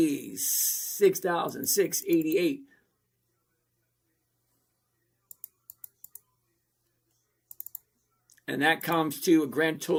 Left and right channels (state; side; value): identical; both; correlation 1.00